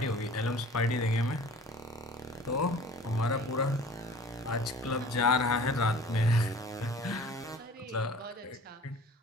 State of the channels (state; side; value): normal; both; correlation 0.45